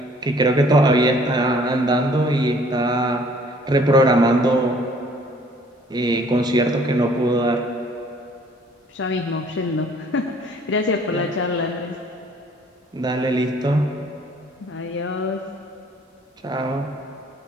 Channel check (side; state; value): both; normal; correlation 0.57